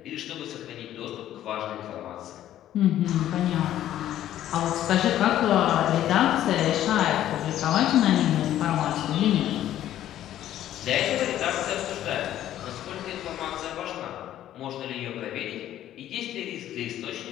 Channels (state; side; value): quieter; right; 12.3 dB